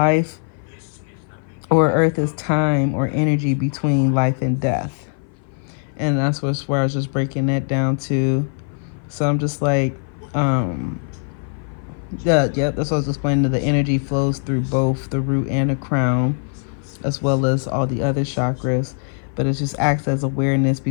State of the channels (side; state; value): right; silent; 57 dB below the other